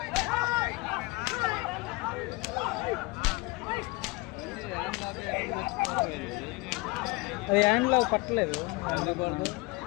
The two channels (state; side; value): quieter; right; 24.1 dB